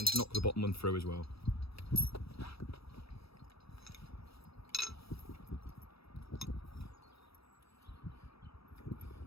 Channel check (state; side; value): late; right; 0.77 ms